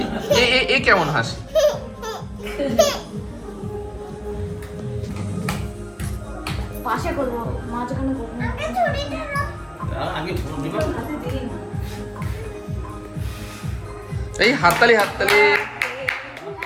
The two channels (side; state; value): both; identical; correlation 1.00